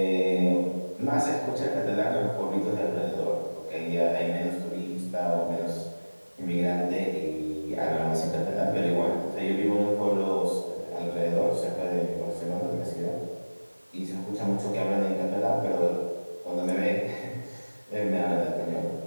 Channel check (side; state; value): both; inverted; correlation -1.00